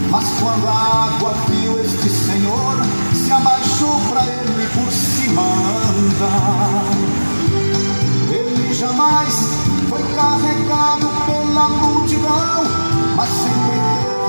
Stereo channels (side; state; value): both; inverted; correlation -1.00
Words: mas quando a água viu este Senhor, se abaixou para ele por cima andar. Ele jamais foi carregado pela multidão, mas sempre